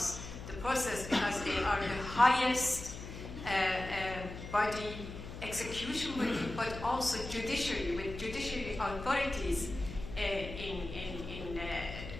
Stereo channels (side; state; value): left; noise; hum, 10 dB below the sound